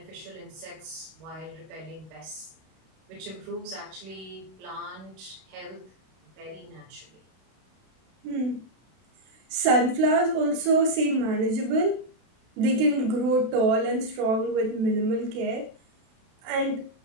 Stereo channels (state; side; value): late; left; 32 ms